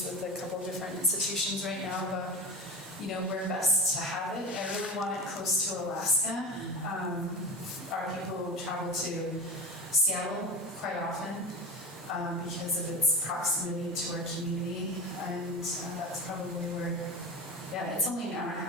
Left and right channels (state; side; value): normal; both; correlation 0.27